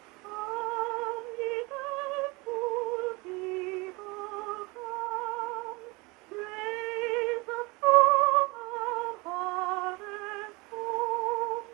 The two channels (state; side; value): quieter; left; 25.4 dB